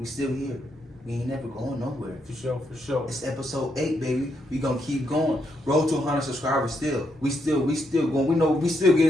still here. We ain't never going nowhere. For sure. It's episode 8, baby. We gonna keep going. Road to 100 subscribers still. We still going. We know we still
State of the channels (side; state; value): both; normal; correlation 0.78